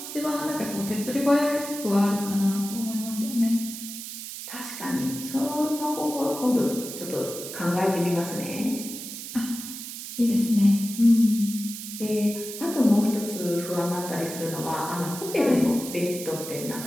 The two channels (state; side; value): noise; right; hiss, 9 dB below the sound